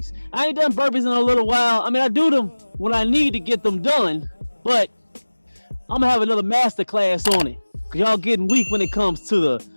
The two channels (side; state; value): both; inverted; correlation -1.00